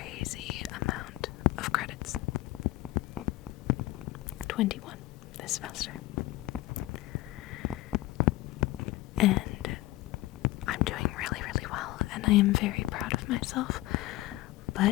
amount of credits. 21 this semester. And I'm doing really well, and I am very proud of myself,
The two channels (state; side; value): quieter; right; 17.7 dB